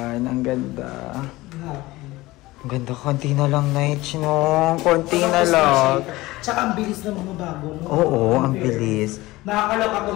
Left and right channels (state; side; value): quieter; right; 19.3 dB